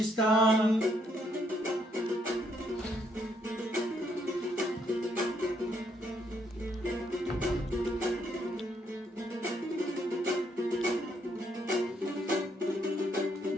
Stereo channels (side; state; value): both; normal; correlation 0.73